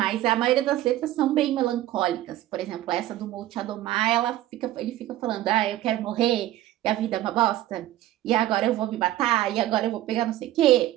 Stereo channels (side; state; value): left; quieter; 14.5 dB